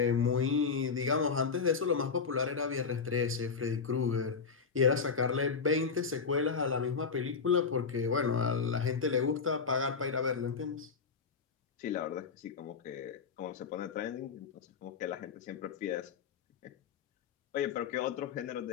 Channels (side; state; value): right; quieter; 5.5 dB